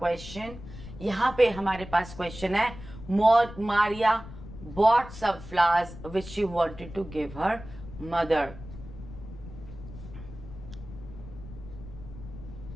यहां पे हमारे पास question है, Maria bought some flowers which she wanted to give her mother.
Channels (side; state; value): left; noise; rumble, 14 dB below the sound